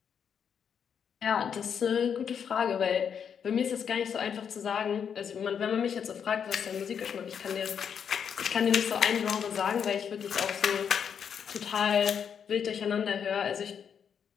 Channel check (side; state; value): right; quieter; 7.5 dB